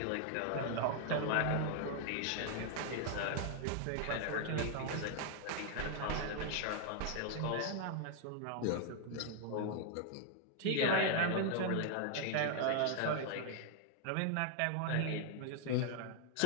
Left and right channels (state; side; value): different; both; correlation 0.00